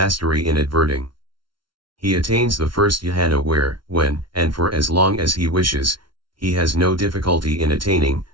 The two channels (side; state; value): left; late; 0.73 ms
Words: in adverting. He attains the first dhyana where, when, and for as long as he wishes, he has no difficulty in attaining,